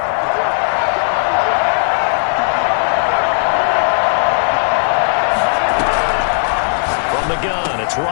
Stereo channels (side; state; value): right; silent; digital silence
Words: From the gun, it's